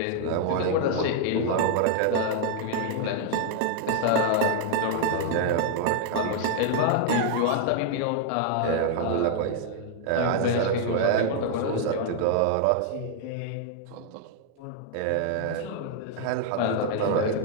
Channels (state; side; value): different; both; correlation 0.00